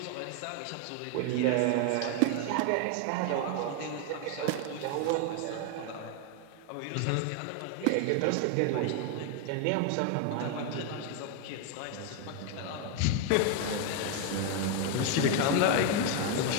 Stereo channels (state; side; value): different; both; correlation 0.01